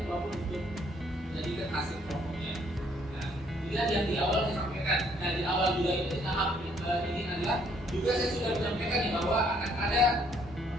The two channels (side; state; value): both; normal; correlation 0.66